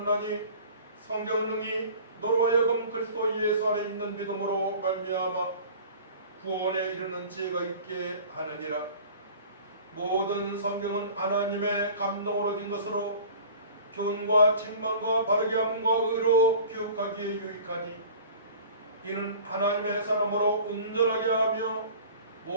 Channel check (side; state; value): both; inverted; correlation -0.44